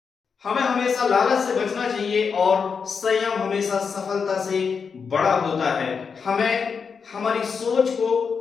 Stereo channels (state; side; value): quieter; right; 5.8 dB